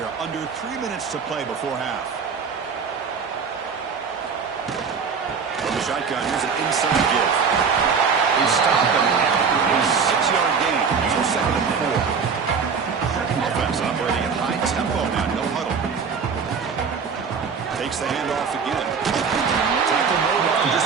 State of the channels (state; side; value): quieter; left; 5.8 dB